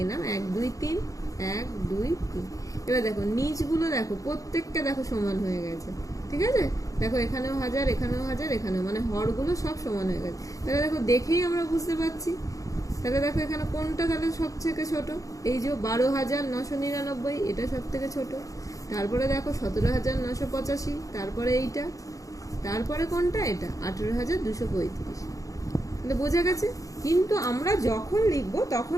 নাম, 1 2 3, 1 2 3। এবার দেখো নিচগুলো দেখো প্রত্যেকটা দেখো সমান হয়ে গেছে, ঠিক আছে। দেখো এখানেও 1000, এখানেও 1000, এখানেও, মানে হরগুলো সব সমান হয়ে গেছে। তাহলে দেখো দেখেই আমরা বুঝতে পারছি। তাহলে দেখো এখানে কোনটা তাহলে সব থেকে ছোট, এই যে 12,999, এটা সব থেকে ছোট। তারপরে দেখো 17,985, তারপরে এইটা, তারপরে কোনটা, এটা 18,235। তাহলে বোঝা গেছে। কিন্তু আমরা যখন লিখবো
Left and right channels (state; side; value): late; right; 0.16 ms